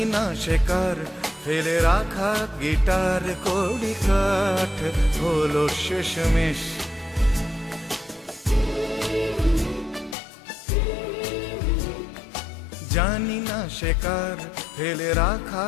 না শেখার ফেলে রাখা গিটার। কড়ি কাঠ হলো শেষমেশ, জানি না শেখার ফেলে রাখা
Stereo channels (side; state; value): right; drops out; at 10.2 s